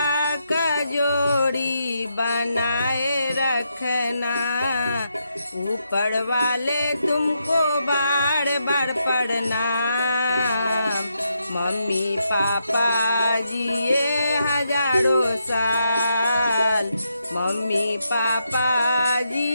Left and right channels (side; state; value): both; inverted; correlation -0.81